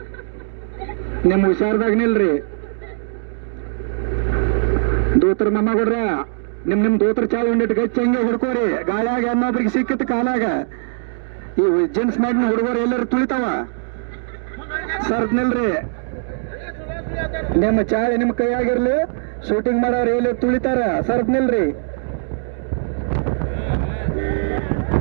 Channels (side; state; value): left; silent; digital silence